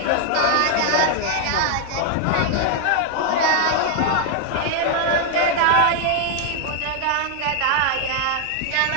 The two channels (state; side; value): different; both; correlation 0.00